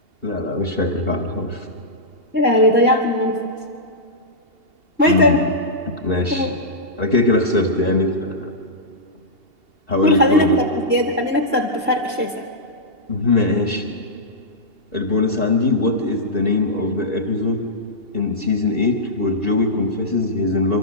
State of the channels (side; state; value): left; late; 2.8 ms